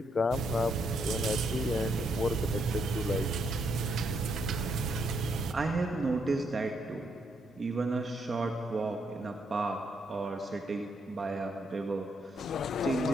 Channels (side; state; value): both; normal; correlation 0.76